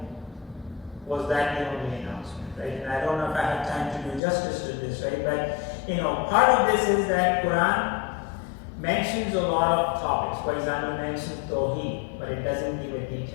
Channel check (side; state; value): right; drops out; at 4.2 s